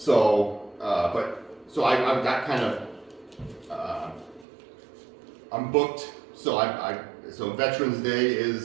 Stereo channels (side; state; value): left; drops out; at 4.5 s